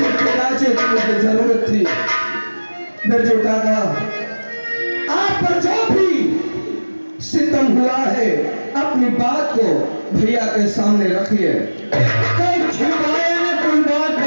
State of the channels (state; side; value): inverted; both; correlation -1.00